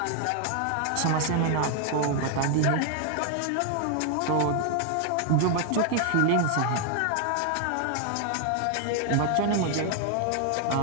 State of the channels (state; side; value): different; both; correlation 0.00